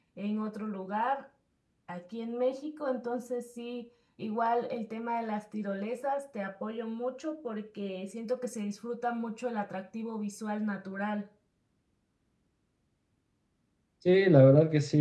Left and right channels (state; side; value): identical; both; correlation 1.00